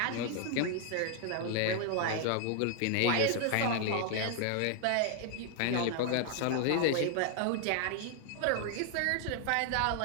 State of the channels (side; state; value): both; different; correlation 0.00